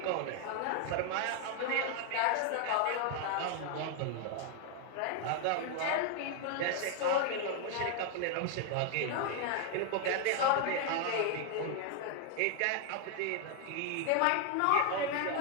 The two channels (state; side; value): different; both; correlation 0.00